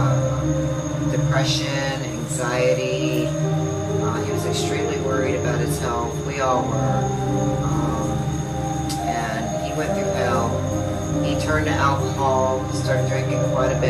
depression, anxiety. He was extremely worried about his health. We all were. And he went through hell. He turned to alcohol, started drinking quite a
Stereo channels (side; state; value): both; identical; correlation 1.00